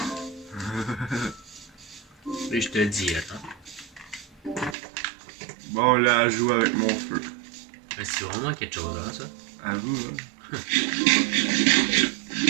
Et je te dis, attends. Bon, là, elle joue avec mon feu. C'est vraiment quelque chose, là, ça. À vous, hein.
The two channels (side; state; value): left; drops out; at 4.8 s